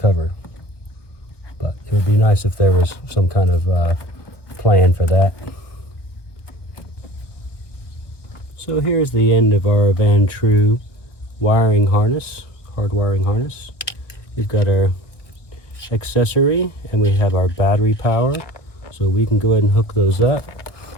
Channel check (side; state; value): right; late; 1.0 ms